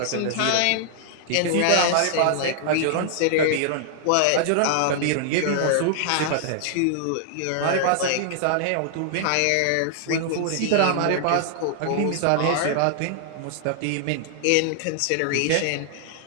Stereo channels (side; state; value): both; different; correlation -0.01